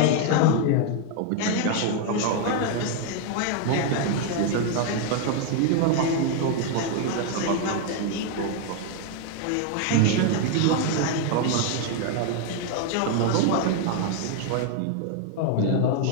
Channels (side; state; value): both; different; correlation 0.01